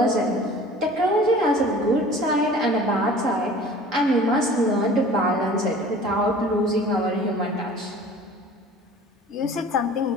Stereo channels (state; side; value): normal; both; correlation 0.45